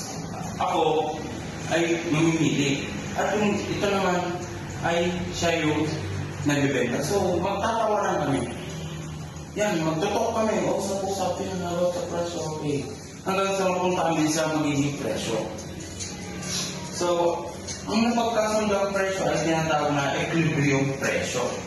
ako ay mamimili. At yung ito naman ay siya yung nagbibenta. So, magtatawaran kami. Yan, magtutok kami. Usap-usapin na about sa presyo, okay. Hanggang sa mapunta kami sa magiging presyo. So, ang napagkasundang presyo ay tinatawag na equilibrium presyo.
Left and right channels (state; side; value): identical; both; correlation 1.00